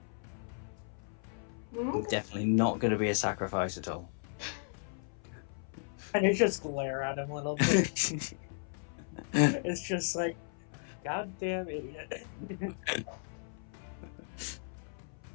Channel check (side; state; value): right; silent; 54 dB below the other